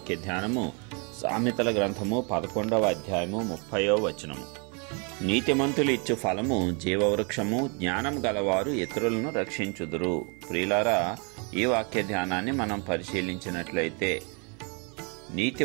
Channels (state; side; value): quieter; left; 34.9 dB